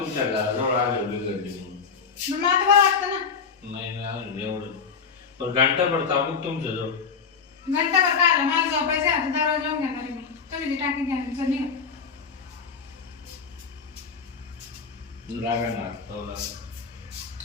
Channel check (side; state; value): right; quieter; 5.8 dB